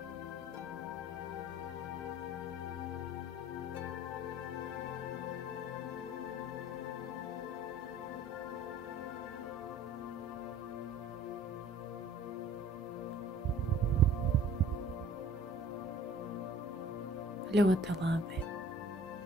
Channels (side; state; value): both; normal; correlation 0.50